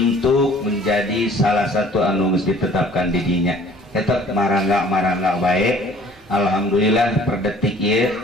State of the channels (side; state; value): both; normal; correlation 0.53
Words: menjadi salah satu anu geus ditetapkan di dinya tetap marangga baik. Alhamdulillah per detik ieu